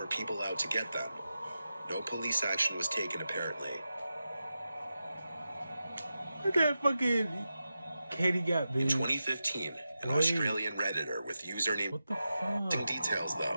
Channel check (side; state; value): both; inverted; correlation -0.91